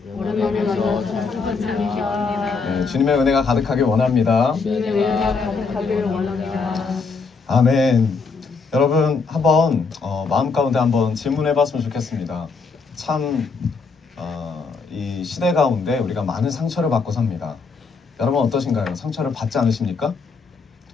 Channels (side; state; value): right; quieter; 4.7 dB